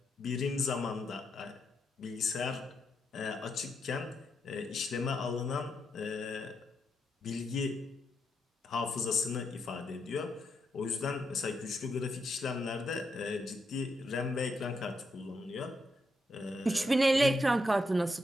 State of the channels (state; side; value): normal; both; correlation 0.81